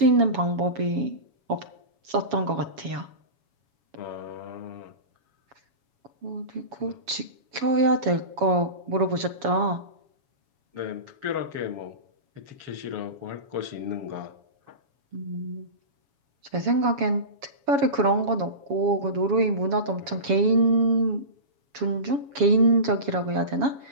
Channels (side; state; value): left; late; 7.2 ms